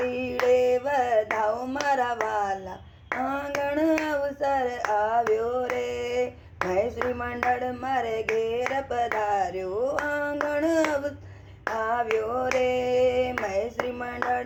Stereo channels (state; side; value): identical; both; correlation 1.00